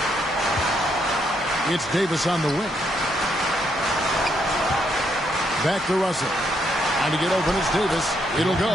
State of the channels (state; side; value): normal; both; correlation 0.75